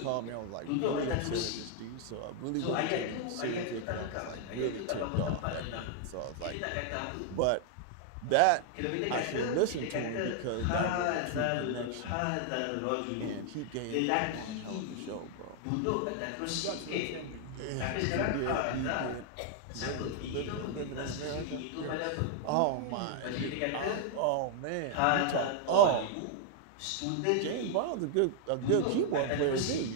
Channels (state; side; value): different; both; correlation 0.00